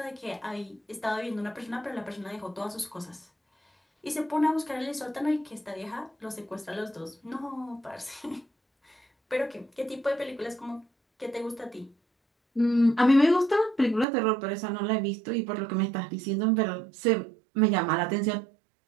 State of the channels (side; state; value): left; drops out; at 14.1 s